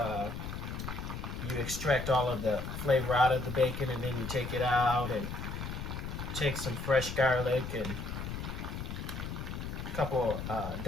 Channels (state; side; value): noise; left; rumble, 6 dB below the sound